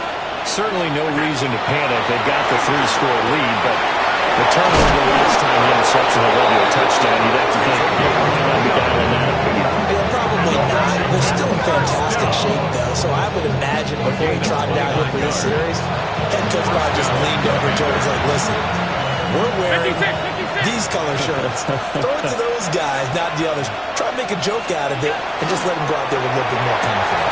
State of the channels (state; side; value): identical; both; correlation 1.00